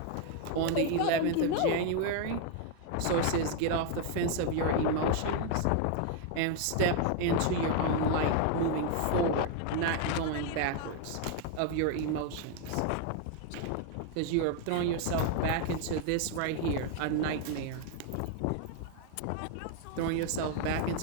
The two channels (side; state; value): both; different; correlation 0.01